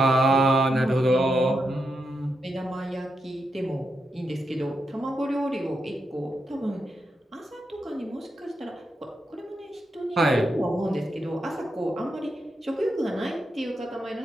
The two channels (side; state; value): both; normal; correlation 0.85